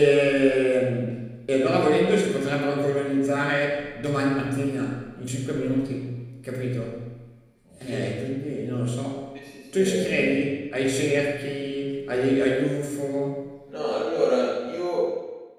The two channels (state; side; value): identical; both; correlation 1.00